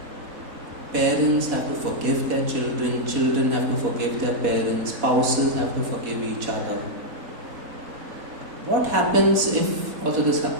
Parents have to forgive their children, children have to forgive their parents, spouses have to forgive each other. What happens if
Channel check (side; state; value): left; late; 4.1 ms